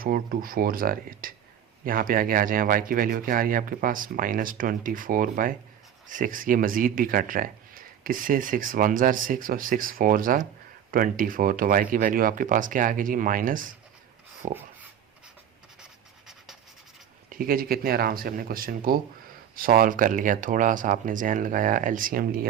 2 4 ज़ार 8। यहाँ पे आगे आ जाए, y की वैल्यू क्या आ रही है आपके पास? -24/6। ये मज़ीद भी कट रहा है, किससे? 6 1 ज़ार 6 और 6 4 ज़ार 24। तो y की वैल्यू आपके पास क्या आ गई जी? -4। ठीक है जी, कितने आराम से हमने क्वेश्चन को सॉल्व कर लिया। थोड़ा सा आपने जहन लगाया, एलसीएम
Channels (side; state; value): left; quieter; 9.5 dB